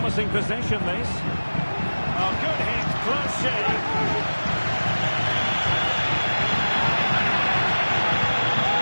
possession, this. Oh, good hit, close shave.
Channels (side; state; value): both; inverted; correlation -1.00